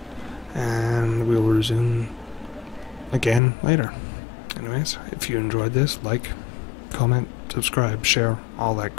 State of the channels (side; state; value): right; drops out; at 3.4 s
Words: And we'll resume again later. Anyways, if you enjoyed this, like, comment, subscribe, share, all that